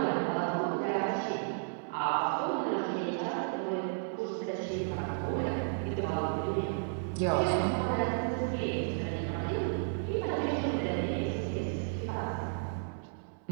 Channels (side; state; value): left; silent; 56 dB below the other